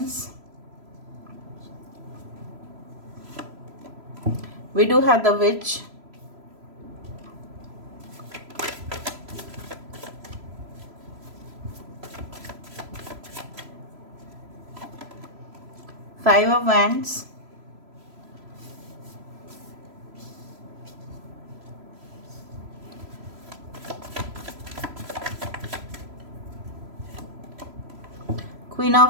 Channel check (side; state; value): left; late; 3.0 ms